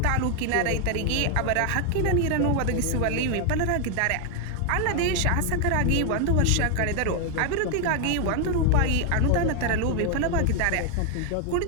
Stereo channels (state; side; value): different; both; correlation 0.01